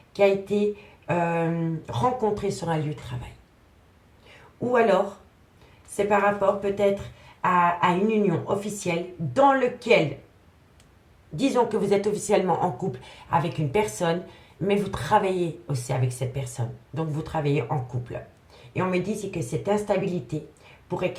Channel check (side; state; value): both; identical; correlation 1.00